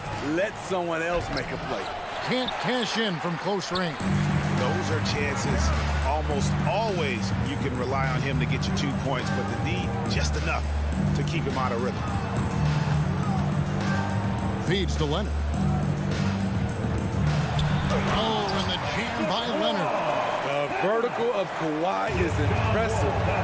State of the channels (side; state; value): both; identical; correlation 1.00